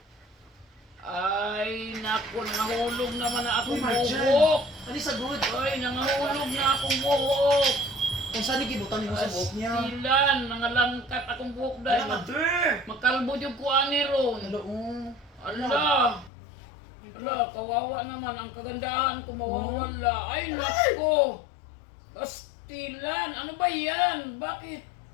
Ay, naku, nangahulog naman na akong buhok. Ano sa good? Ay, nangahulog na akong buhok. Kung saan ikibutan mo sa buhok niya? Astilan, nangalangkat akong buhok dahil. Ala, mother! Magkalbo yung kuani ron. Hello, Ala! Ala, kawawa naman. Ang kagandahan ko mawawala. Ay, nako! Pastilan! Ano ba yan? Bakit?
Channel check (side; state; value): right; drops out; at 16.3 s